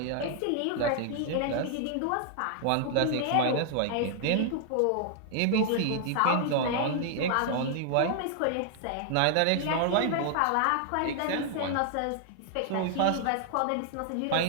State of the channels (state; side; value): different; both; correlation 0.00